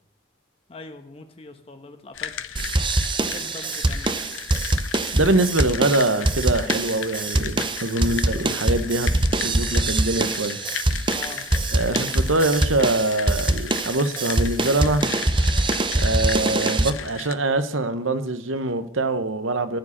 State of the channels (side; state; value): both; normal; correlation 0.36